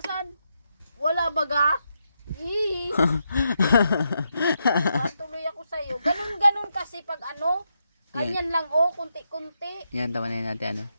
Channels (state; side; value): inverted; both; correlation -0.83